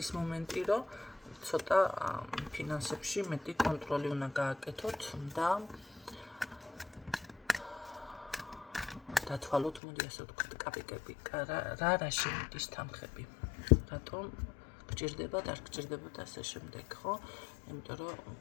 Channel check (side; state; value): right; drops out; at 9.8 s